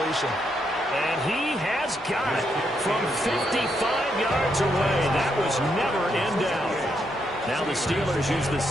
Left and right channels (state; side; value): normal; both; correlation 0.78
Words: And he has got it from 55 yards away. That was never in doubt. Now the Steelers use the